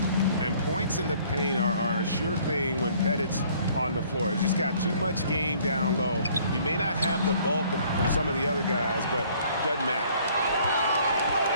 And points in the paint are a sure thing when Pettit's on the floor. He's just got too much game down low. He may not have the bulk of some of the other guys, but doesn't matter.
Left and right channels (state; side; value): inverted; both; correlation -0.59